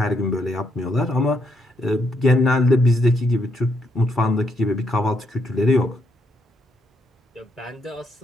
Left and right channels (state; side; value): normal; both; correlation 0.76